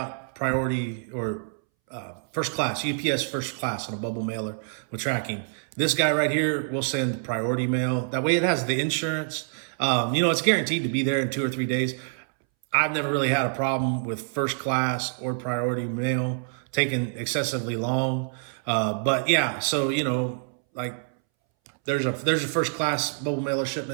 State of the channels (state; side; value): silent; left; 61 dB below the other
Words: priority or first class, UPS first class on a bubble mailer with tracking. This guy right here, we'll send priority mail. That way it has the insurance. It's guaranteed to be there in 2 or 3 days. I've never really had a problem with first class or priority mail taking excessively long. But yeah, so, like there's a first class bubble mailer